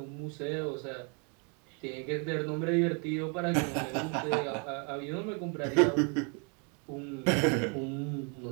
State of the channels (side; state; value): left; quieter; 36.6 dB